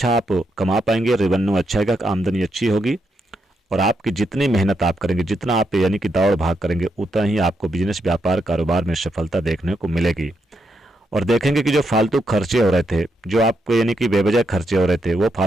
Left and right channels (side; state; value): both; normal; correlation 0.81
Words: आप कमा पाएंगे, रेवेन्यू अच्छा आएगा, आमदनी अच्छी होगी और आपकी जितनी मेहनत आप करेंगे, जितना आप यानी कि दौड़ भाग करेंगे, उतना ही आपको बिजनेस व्यापार कारोबार में सफलता देखने को मिलेगी। और देखेंगे कि जो फालतू खर्चे हो रहे थे, जो आपको यानी कि बेवजह खर्चे हो रहे थे, वो